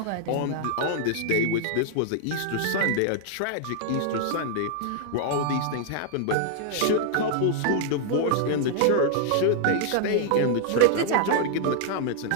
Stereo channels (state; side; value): different; both; correlation -0.01